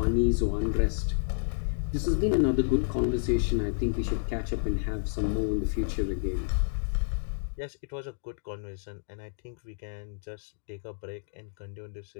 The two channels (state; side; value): silent; right; digital silence